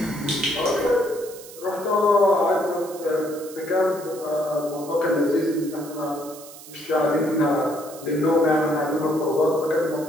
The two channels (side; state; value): right; noise; hiss, 17 dB below the sound